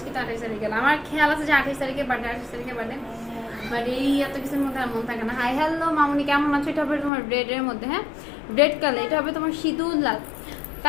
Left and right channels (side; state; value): right; drops out; at 7.1 s